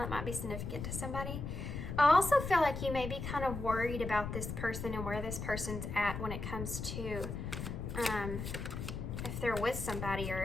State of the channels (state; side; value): noise; left; rumble, 5 dB below the sound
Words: It might be significant to somebody. I also feel like you may be kind of worried about this person and where this person's at when it comes to if they're with somebody or